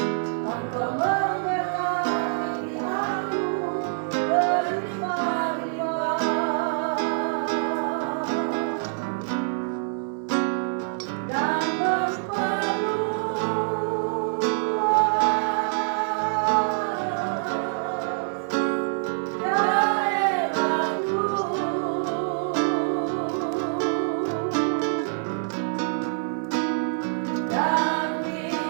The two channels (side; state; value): left; silent; digital silence